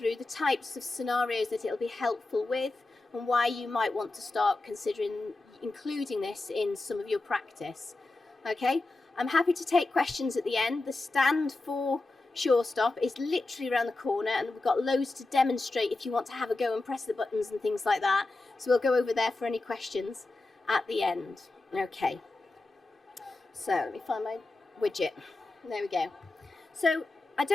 the types of scenarios that it'll be helpful with and why you might want to start considering including this in some of your practice. Okay, I'm happy to take questions at the end. The stand for Surestop is literally around the corner, and we've got loads to demonstrate if you want to have a go and press the buttons and things like that. So we'll go over there for any questions at the end. Okay, so let me find my widget. There we go. So I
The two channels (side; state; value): right; quieter; 3.1 dB